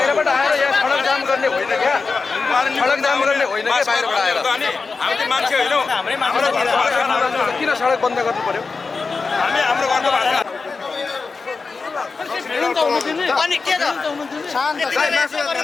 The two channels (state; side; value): quieter; right; 4.4 dB